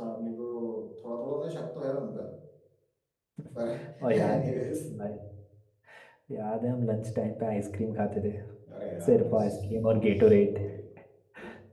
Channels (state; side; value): identical; both; correlation 1.00